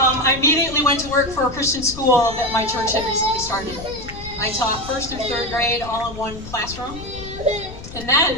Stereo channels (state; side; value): noise; left; rumble, 13 dB below the sound